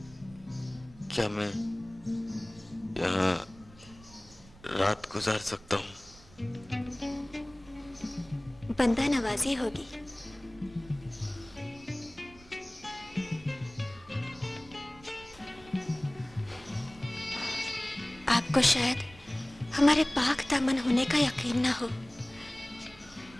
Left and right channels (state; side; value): noise; right; rumble, 23 dB below the sound